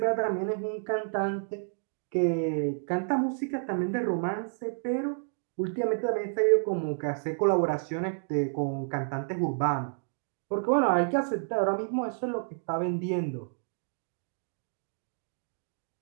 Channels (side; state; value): left; silent; digital silence